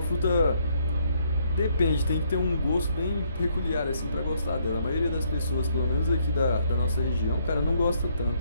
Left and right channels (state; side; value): inverted; both; correlation -0.70